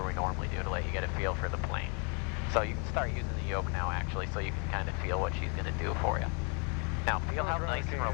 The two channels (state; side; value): quieter; right; 36.0 dB